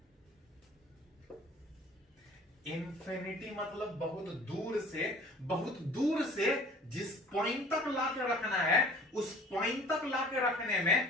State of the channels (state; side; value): normal; both; correlation 0.48